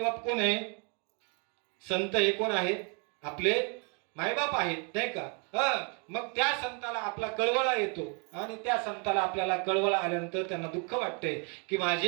बाप कोण आहे संत हे कोण आहेत आपले मायबाप आहेत नाही का. मग त्या संताला आपला कळवळा येतो आणि त्या संताला आपल्याला कळवळा आल्यानंतर त्यांना दुःख वाटते की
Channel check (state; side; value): quieter; left; 36.3 dB